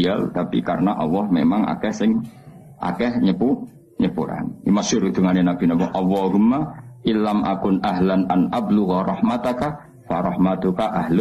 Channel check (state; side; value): identical; both; correlation 1.00